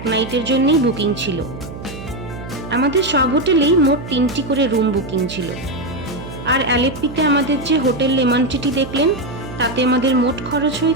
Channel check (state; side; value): noise; right; hum, 12 dB below the sound